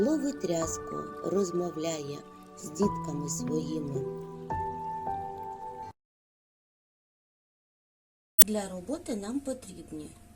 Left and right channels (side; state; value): both; identical; correlation 1.00